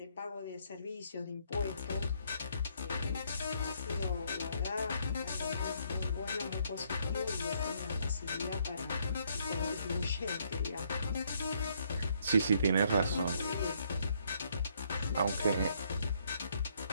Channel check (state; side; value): inverted; both; correlation -0.69